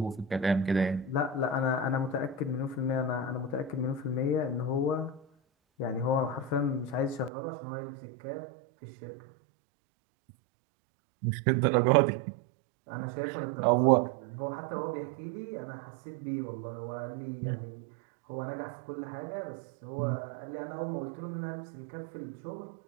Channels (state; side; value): drops out; left; at 7.3 s